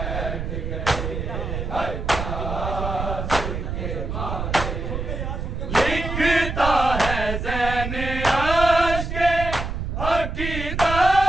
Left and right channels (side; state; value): right; noise; rumble, 4 dB below the sound